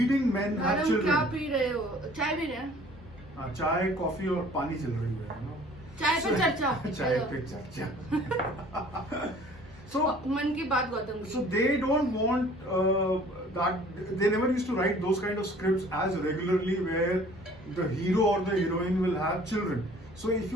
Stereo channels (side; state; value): both; normal; correlation 0.52